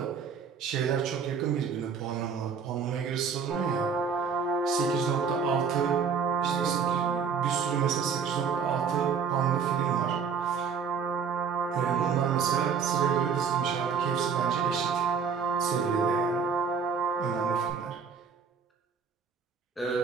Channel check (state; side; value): quieter; left; 6.2 dB